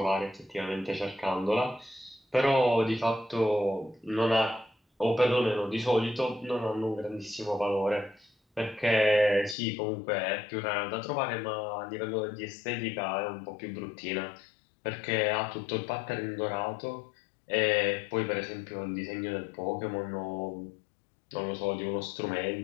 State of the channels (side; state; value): right; drops out; at 9.6 s